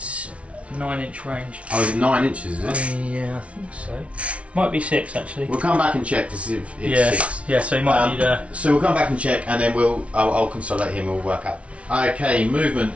9-inch range. Oh, is it 9 inches, is it? Yeah, I think so. Might be 6 actually. We'll come back and check to see if it's Yeah, 6. yeah. So he might need. So we'll come back and check, and then I'll consolidate him. We'll work out. Okay, movement.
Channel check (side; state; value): left; late; 0.062 ms